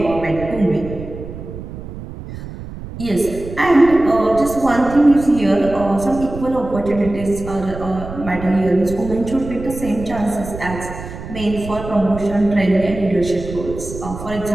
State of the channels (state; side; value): noise; right; rumble, 11 dB below the sound